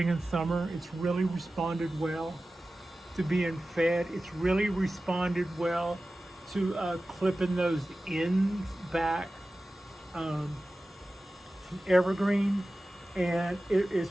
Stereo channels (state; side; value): normal; both; correlation 0.95